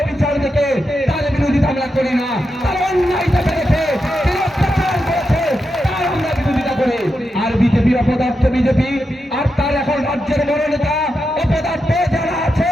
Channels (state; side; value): normal; both; correlation 0.87